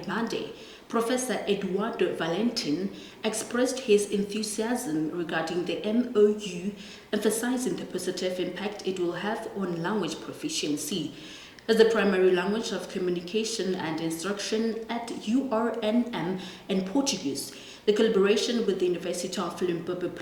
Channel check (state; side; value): identical; both; correlation 1.00